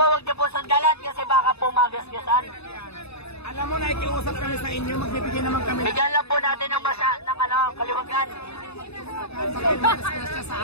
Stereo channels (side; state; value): right; late; 0.79 ms